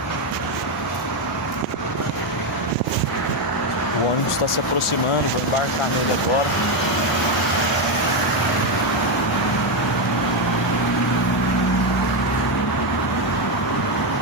O ônibus está se aproximando, vou embarcar nele agora.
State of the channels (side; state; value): both; normal; correlation 0.07